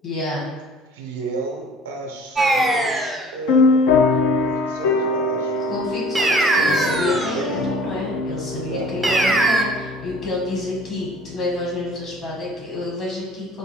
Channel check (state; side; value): normal; both; correlation 0.49